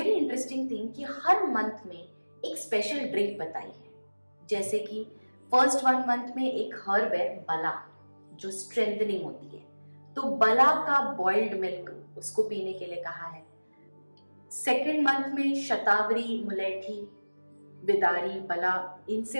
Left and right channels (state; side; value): inverted; both; correlation -1.00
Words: इंटरेस्टिंग थिंग कि हर मंथ में एक स्पेशल ड्रिंक बताई है। जैसे कि फर्स्ट 1 मंथ में एक हर्ब है बला, जो स्ट्रेंथनिंग होती है, तो बला का बॉइल्ड मिल्क उसको पीने के लिए कहा है। सेकेंड मंथ में शतावरी, मुलेठी, बिदारी, बला, इनसे